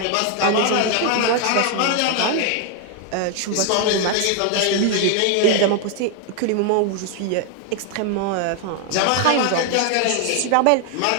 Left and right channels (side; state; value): both; different; correlation 0.00